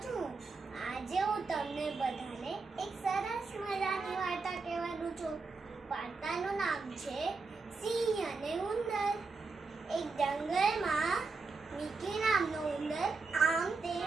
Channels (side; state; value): left; quieter; 4.2 dB